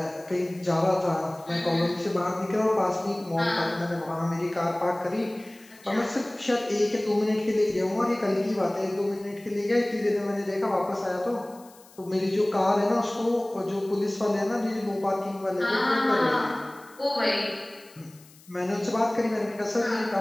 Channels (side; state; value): left; noise; hiss, 25 dB below the sound